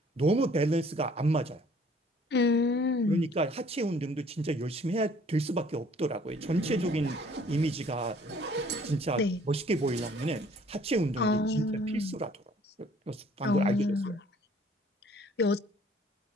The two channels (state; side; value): normal; both; correlation 0.57